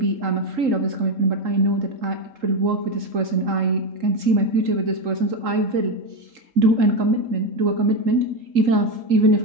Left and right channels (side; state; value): left; late; 3.8 ms